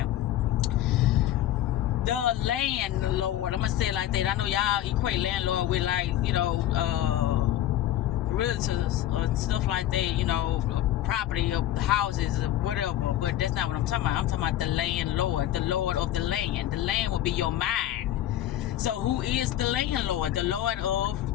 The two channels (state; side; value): quieter; right; 12.9 dB